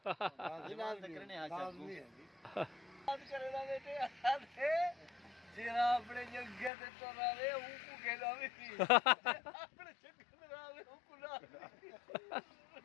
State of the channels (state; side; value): drops out; right; at 6.7 s